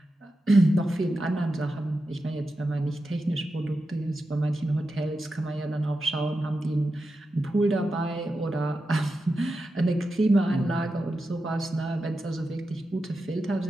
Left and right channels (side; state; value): both; normal; correlation 0.90